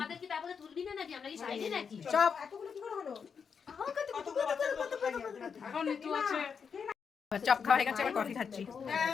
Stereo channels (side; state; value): right; quieter; 6.3 dB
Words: কি তারপরে তুলবি না নাকি? আমরা কি সাইডে নাকি? চপ। চপ খাওয়া হয়ে গেছে, এবার কফি খাচ্ছি।